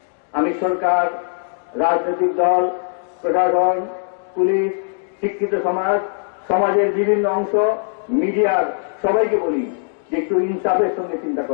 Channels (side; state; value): right; silent; digital silence